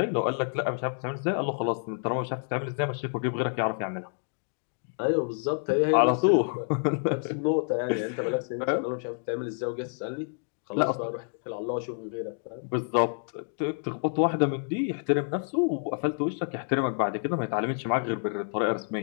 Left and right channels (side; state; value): right; silent; 59 dB below the other